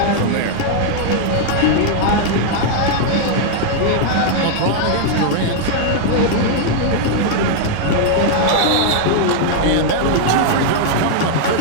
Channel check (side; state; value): both; different; correlation 0.00